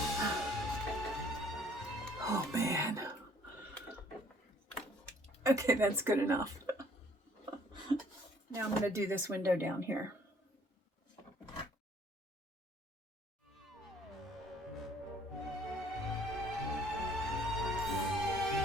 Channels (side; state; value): both; normal; correlation 0.59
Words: Oh man. Okay, that's good enough. Now I'm going to do this window down here.